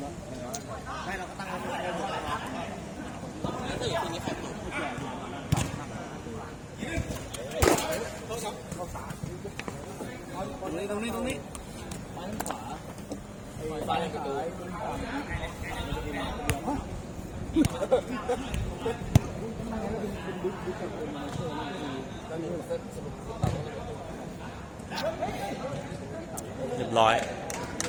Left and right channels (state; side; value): identical; both; correlation 1.00